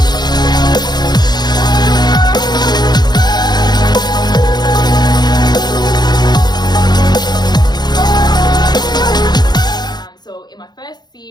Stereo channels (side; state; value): right; late; 0.20 ms